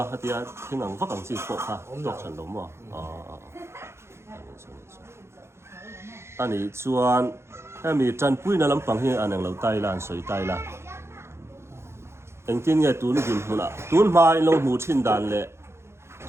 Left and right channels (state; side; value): late; left; 0.13 ms